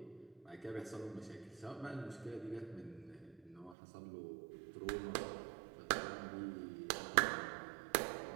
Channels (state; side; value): drops out; left; at 3.8 s